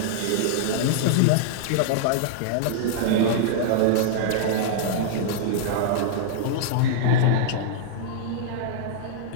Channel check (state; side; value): different; both; correlation -0.02